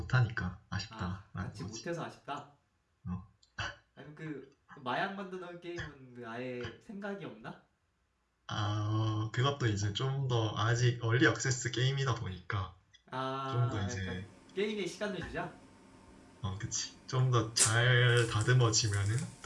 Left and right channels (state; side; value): identical; both; correlation 1.00